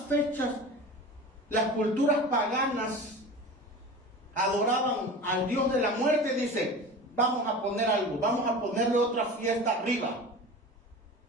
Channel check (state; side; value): normal; both; correlation 0.34